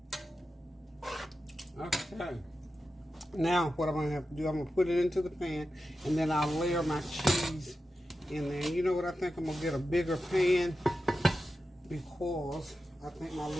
Okay. Now, what I'm going to have to do, I'm going to put it into the pan, and then I'll layer my cheese in there. You know what? I think I'm going to get a bigger pan because I think my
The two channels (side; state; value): both; normal; correlation 0.91